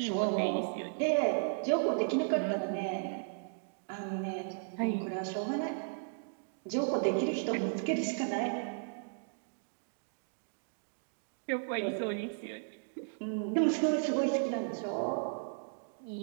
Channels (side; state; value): left; silent; digital silence